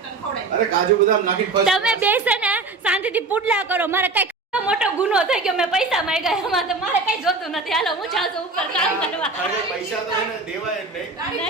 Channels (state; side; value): quieter; left; 3.6 dB